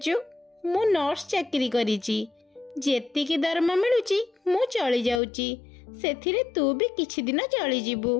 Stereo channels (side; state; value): right; drops out; at 5.2 s